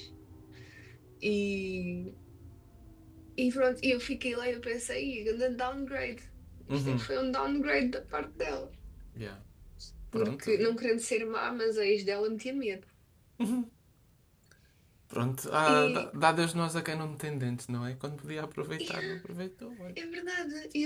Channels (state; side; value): identical; both; correlation 1.00